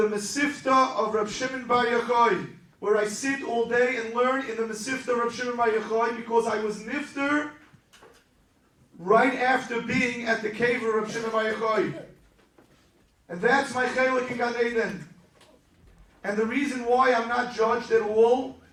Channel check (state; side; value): identical; both; correlation 1.00